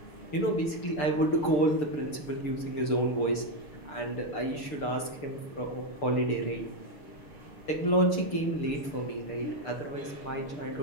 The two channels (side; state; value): right; late; 6.7 ms